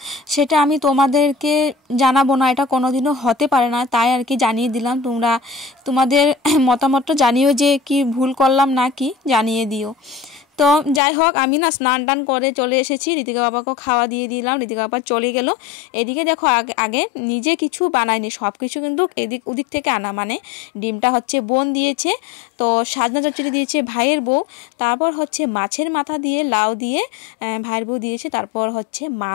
সেটা আমি তোমাদেরকে জানাবো না, এটা কোনোদিনও হতে পারে না, তাই আর কি জানিয়ে দিলাম। তোমরা তোমাদের মতামতটা জানিও যে কি ভুল করলাম না কি, জানিয়ে দিও। তো যাই হোক, আমি না স্নান টান করে চলে এসেছি, ঋতিকা বাবাকেও খাওয়া দিয়ে দিলাম, ঋতিকা বাবা চলে গেল। এদিকে দেখো আগে নিজে কিছু বানাইনি, সব কিছু কিন্তু ওদিক থেকে আনা, মানে ডিমটা হচ্ছে বোন দিয়েছে, তো সাজনা চচ্চড়ি দিয়েছে ভাইয়ের বউ, তারপর হচ্ছে মাছের মাথা দিয়ে লাউ দিয়ে ভাইয়ের বউ দিয়েছে, তারপর হচ্ছে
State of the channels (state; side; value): drops out; right; at 11.0 s